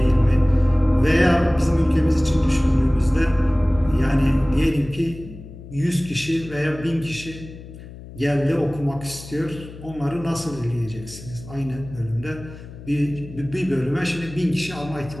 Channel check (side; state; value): left; noise; hum, 15 dB below the sound